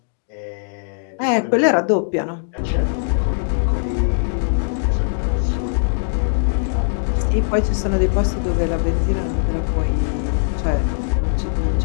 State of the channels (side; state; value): right; silent; digital silence